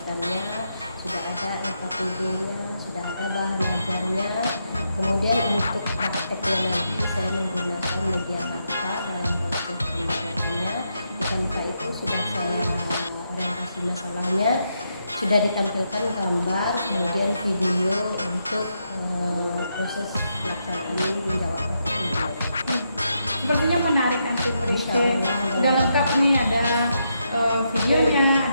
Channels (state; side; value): inverted; both; correlation -0.81